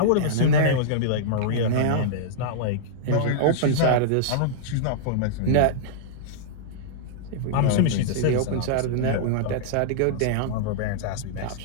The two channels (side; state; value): both; different; correlation -0.02